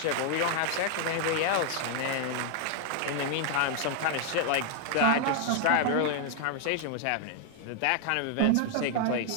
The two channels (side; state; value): both; different; correlation 0.00